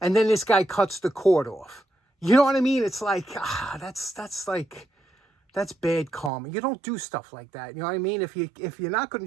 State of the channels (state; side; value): drops out; left; at 6.3 s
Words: And then this guy cuts the cord off. You know what I mean? It's like, that's bad karma. You don't do stuff like that. You know what I mean? If you're not going